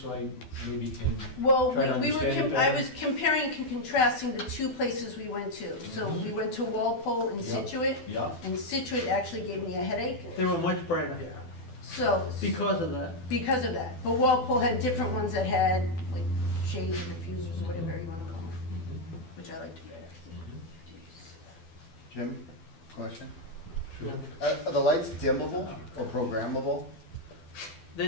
so I maybe can, Well, Try to we were, understand it I better. was comparing and contrasting the two places we went to. So we went to Walpole and Yeah. Situate, yeah? and Situate actually gave me a headache. They were much brighter So, because of that. because of that. But Walpole had different ones that had, like, shades or diffusers or whatever you want to call them, which I liked better. Jim, question? Yeah. Are the lights dimmable or programmable?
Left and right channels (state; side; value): late; right; 12 ms